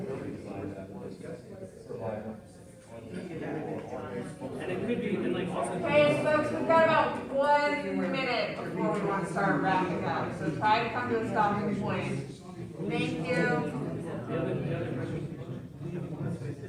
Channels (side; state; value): both; identical; correlation 1.00